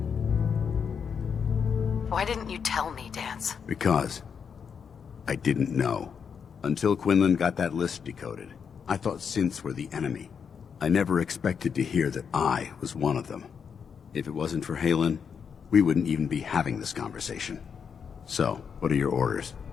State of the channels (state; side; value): quieter; right; 6.7 dB